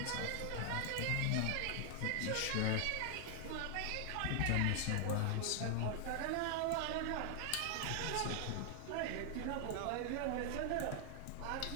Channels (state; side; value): different; both; correlation 0.00